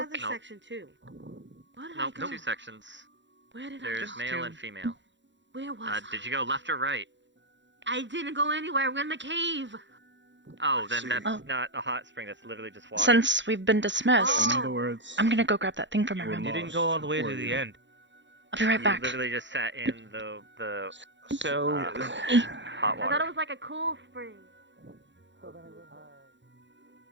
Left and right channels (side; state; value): left; late; 0.53 ms